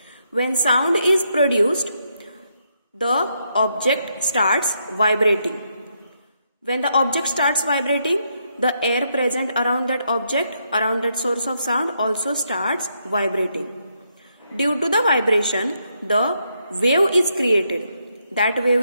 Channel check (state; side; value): inverted; both; correlation -0.78